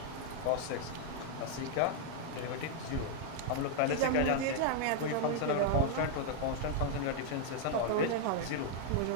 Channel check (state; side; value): different; both; correlation -0.01